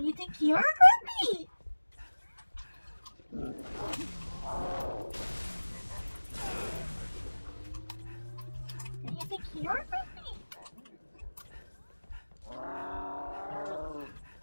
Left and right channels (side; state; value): both; inverted; correlation -1.00